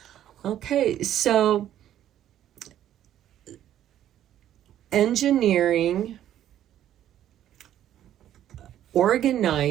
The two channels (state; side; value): quieter; left; 11.5 dB